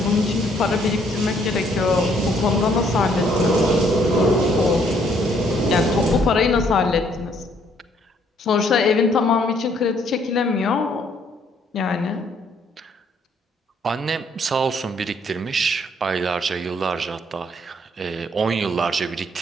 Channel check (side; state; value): both; normal; correlation 0.66